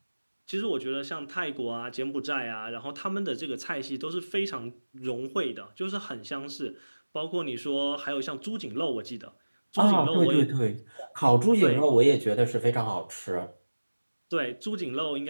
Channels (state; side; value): inverted; both; correlation -1.00